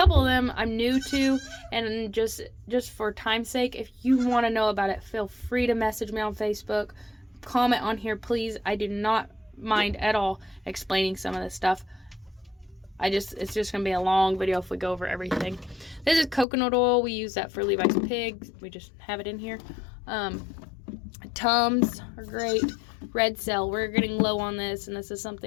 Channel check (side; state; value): right; drops out; at 16.4 s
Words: of them I'm new to, and just for time's sake, if you want to know about it, feel free to message me on Facebook, comment on here, please. I do not mind at all explaining some of this stuff. It's just gonna be a long video if we go over everything. This is coconut oil. We use that for Levi's pigs. We just have it in here. Tums are great. Red Cell, we're getting low on this, and this is